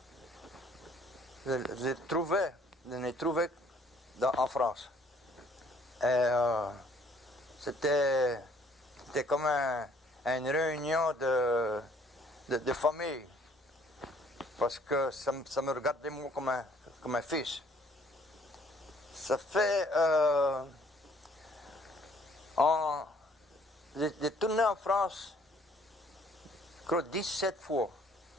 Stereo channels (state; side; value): normal; both; correlation 0.60